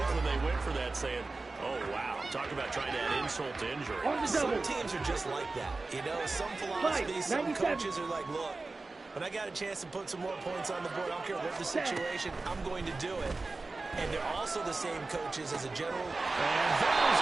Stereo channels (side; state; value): left; quieter; 3.5 dB